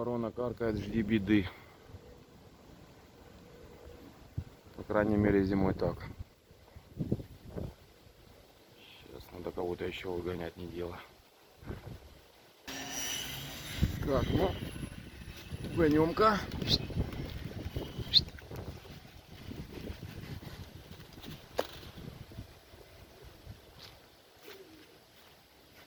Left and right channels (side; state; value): both; identical; correlation 1.00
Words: каркает, жди беды. По крайней мере зимой так. Сейчас надо кого-то еще выгонять, не дело. Так, ну, гонем-ка.